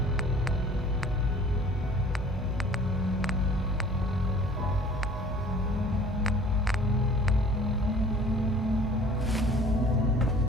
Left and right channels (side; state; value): both; normal; correlation 0.50